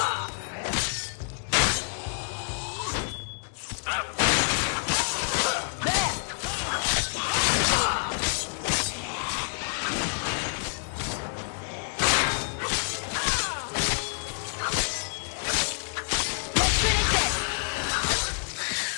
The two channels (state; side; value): silent; right; digital silence